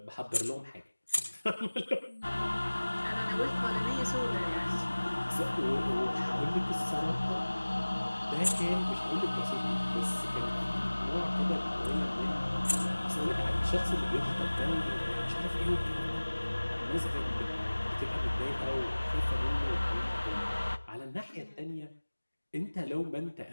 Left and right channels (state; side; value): inverted; both; correlation -1.00